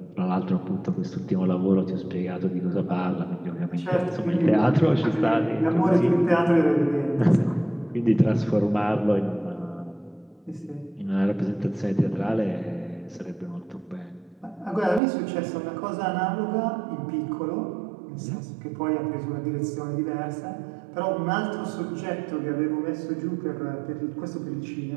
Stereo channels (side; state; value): left; drops out; at 15.0 s